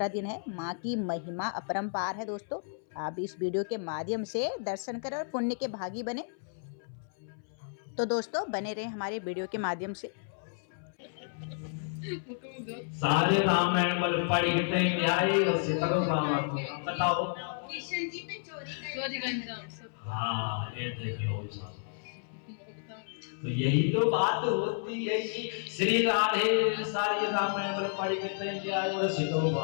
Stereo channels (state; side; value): silent; right; 57 dB below the other